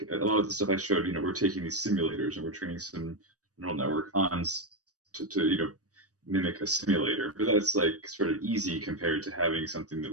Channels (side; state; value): left; late; 0.66 ms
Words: a lot of the stuff I showed, you know, we're taking these simulators and we're training some neural network on to you know, mimic a simulator, but that's like sort of easy compared to having something that